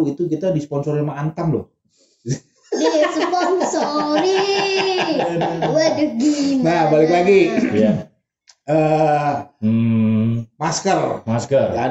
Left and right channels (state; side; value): identical; both; correlation 1.00